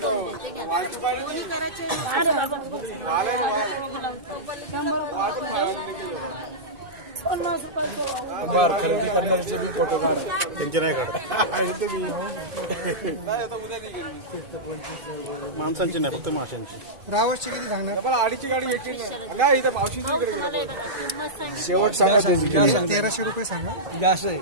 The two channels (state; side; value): late; left; 2.5 ms